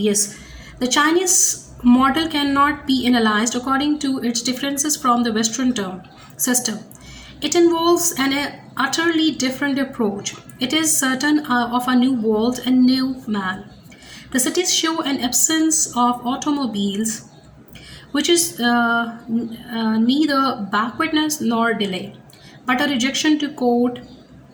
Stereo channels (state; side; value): identical; both; correlation 1.00